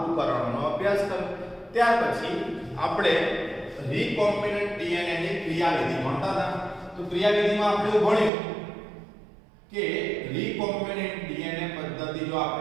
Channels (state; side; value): drops out; left; at 8.3 s